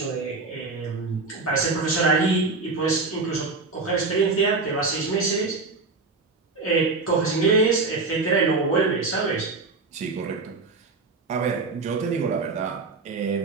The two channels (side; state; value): left; quieter; 3.9 dB